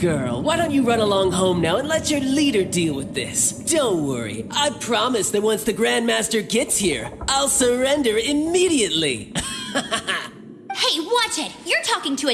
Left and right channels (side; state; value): both; identical; correlation 1.00